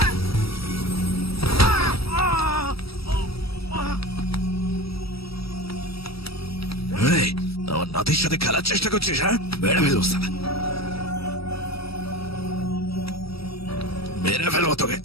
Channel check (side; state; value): right; late; 0.76 ms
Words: এই, আমার নাতির সাথে খেলার চেষ্টা করছিস? হ্যাঁ, মেরে ফেলবো শালা, মেরে ফেলবো তোকে,